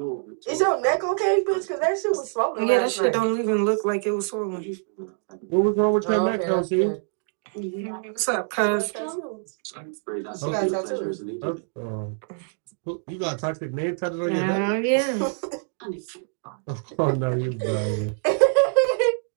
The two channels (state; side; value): silent; left; 62 dB below the other